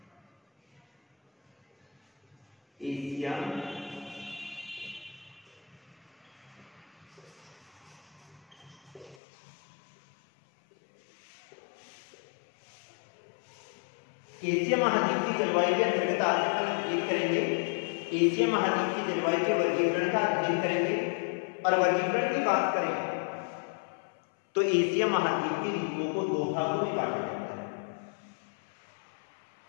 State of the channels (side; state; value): right; drops out; at 9.2 s